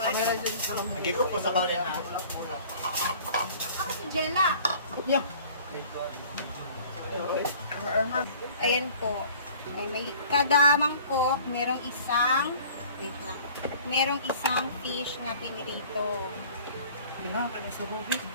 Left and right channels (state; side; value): inverted; both; correlation -0.49